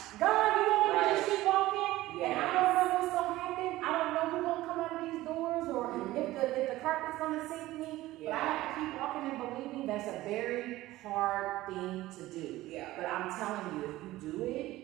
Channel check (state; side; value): quieter; left; 16.8 dB